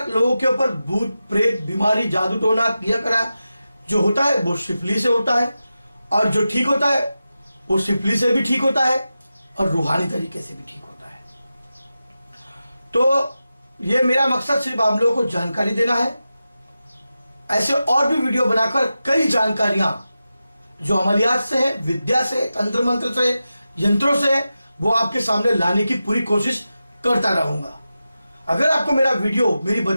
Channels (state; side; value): inverted; both; correlation -0.92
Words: लोगों के ऊपर भूत प्रेत, बीमारी, जादू टोना किया करा जो होता है वो शिफली से होता है और जो ठीक होता है वो शिफली से भी ठीक होता है और रूहानी तरीके से भी ठीक होता है। तो ये मेरा मकसद सिर्फ आप लोगों को जानकारी देना है। ऐसे और भी वीडियो बनाकर कई जानकारियां जो अमलियात से है, विद्या से, तंत्र मंत्र से, यंत्रों से, वो आपके सामने लाने की पूरी कोशिश करता रहूंगा। अगर आपको मेरा वीडियो, मेरी